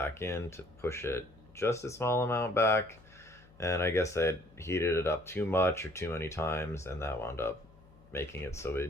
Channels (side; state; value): left; noise; hum, 25 dB below the sound